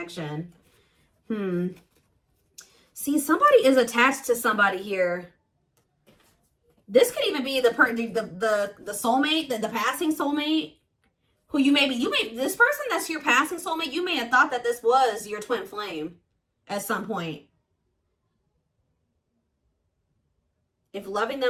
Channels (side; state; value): both; identical; correlation 1.00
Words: See, somebody is attached to somebody here. This could even be the soulmate, the passing soulmate, who this person that's your passing soulmate, you may have thought that this was your twin flame at some point. If loving